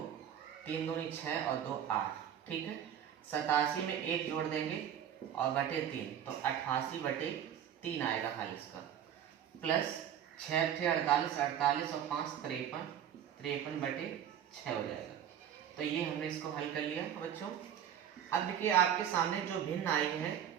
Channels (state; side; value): quieter; left; 9.6 dB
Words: 3 दूनी 6 और 2 8, ठीक है। 87 में 1 जोड़ देंगे और बटे 3, तो 88/3 आएगा हल इसका, प्लस 6 × 48, 48 और 5 53, 53/6 हो जाएगा। तो ये हमने इसको हल कर लिया बच्चों। अब देखिए आपके सामने जो भिन्न आई है